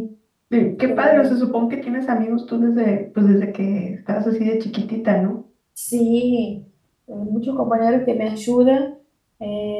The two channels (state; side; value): identical; both; correlation 1.00